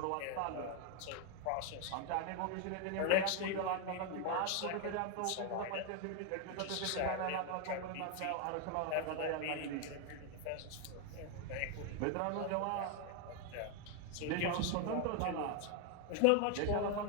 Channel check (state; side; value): different; both; correlation 0.01